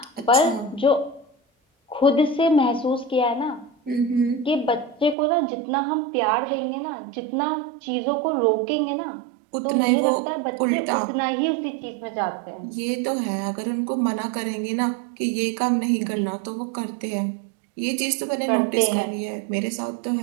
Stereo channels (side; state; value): left; drops out; at 5.2 s